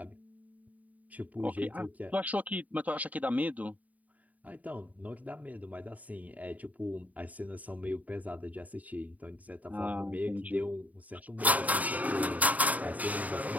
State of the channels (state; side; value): late; left; 0.073 ms